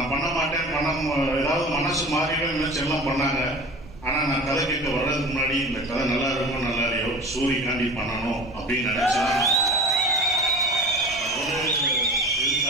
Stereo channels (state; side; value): noise; right; rumble, 18 dB below the sound